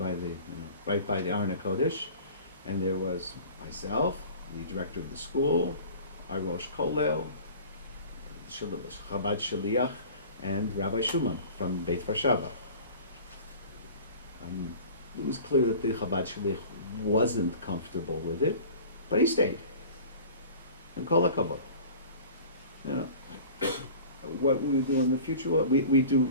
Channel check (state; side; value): inverted; both; correlation -0.42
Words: right by the Aron HaKodesh, and there was myself, the director of the school, our Rosh Kollel, Chabad Shaliach, and Rabbi Shuman from Beit Varshava. It was clear that the Chabad Shaliach wasn't comfortable with it, but he stayed. And kol hakavod. What we do in the future, we